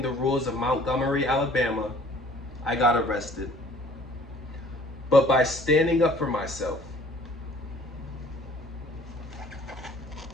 the rules of Montgomery, Alabama, I got arrested. But by standing up for myself.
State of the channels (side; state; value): both; normal; correlation 0.54